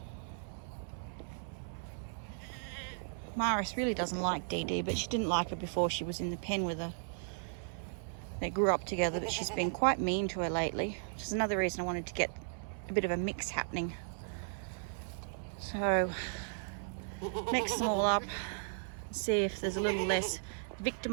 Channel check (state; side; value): silent; left; 54 dB below the other